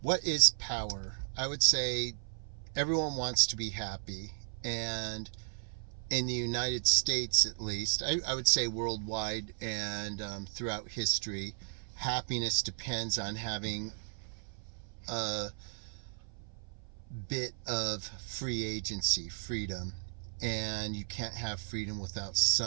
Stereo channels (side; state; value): left; silent; 54 dB below the other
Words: What is power? I would say everyone wants to be happy. And in the United States, at least, I would say worldwide and throughout history, happiness depends on having a bit of free agency, freedom, and you can't have freedom without